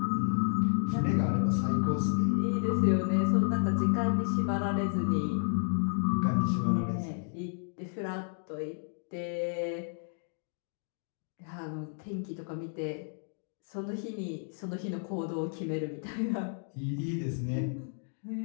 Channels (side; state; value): right; silent; 57 dB below the other